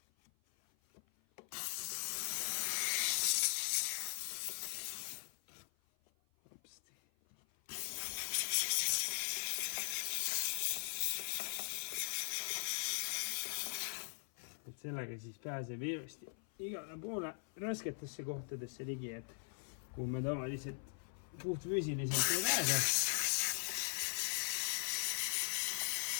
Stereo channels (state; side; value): silent; right; 51 dB below the other